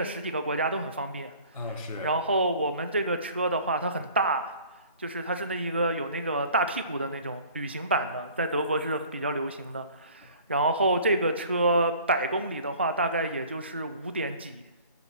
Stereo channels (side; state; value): both; inverted; correlation -0.49